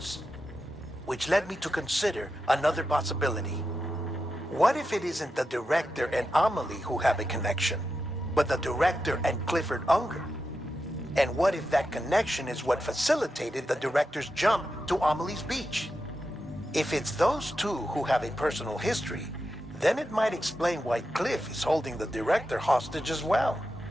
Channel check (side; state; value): both; normal; correlation 0.88